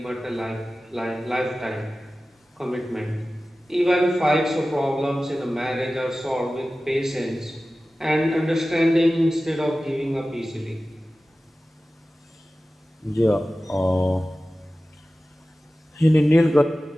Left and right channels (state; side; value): normal; both; correlation 0.96